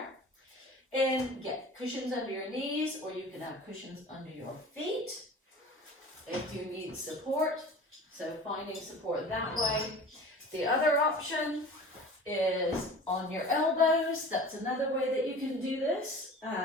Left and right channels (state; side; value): normal; both; correlation 0.40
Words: And get cushions under your knees, or you can have cushions under your feet if you need support. So finding support that way. The other option is on your elbows. That's another way that you can do this.